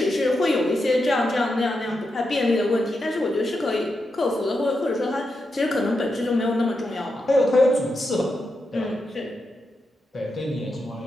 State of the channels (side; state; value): both; normal; correlation 0.86